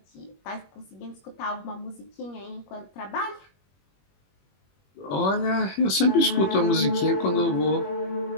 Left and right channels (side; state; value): right; late; 21 ms